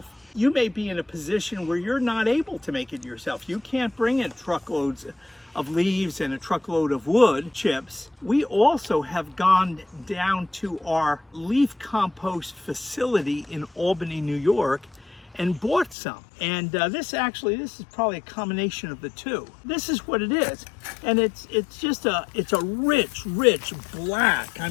You may be in a position where you're not able to make it yourself. You can't bring in truckloads of leaves and a truckload of wood chips. We also have gone down to our leaf compost facility in Albany, New York, and bought some. And this is probably a combination of the two. This is what it is. And it's a rich black. I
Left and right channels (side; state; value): right; drops out; at 16.0 s